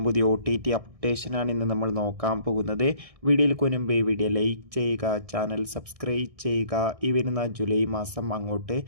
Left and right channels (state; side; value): late; left; 1.6 ms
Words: പുതിയ OTT അപ്ഡേഷനാണ് ഇന്ന് നമ്മൾ നോക്കാൻ പോകുന്നത്. വീഡിയോയിൽ മുൻപ് വീഡിയോ ലൈക്ക് ചെയ്യുക, ചാനൽ സബ്സ്ക്രൈബ് ചെയ്യുക. ഈ വരുന്ന ജൂലൈ മാസം അങ്ങോട്ട്